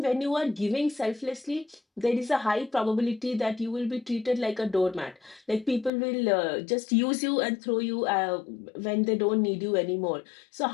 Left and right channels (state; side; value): drops out; right; at 5.9 s